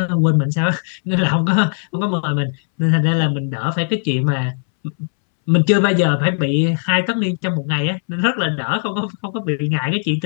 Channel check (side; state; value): right; silent; 67 dB below the other